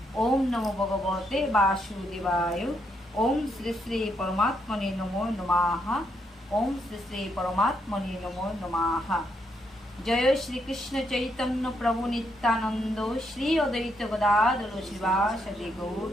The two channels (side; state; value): both; normal; correlation 0.77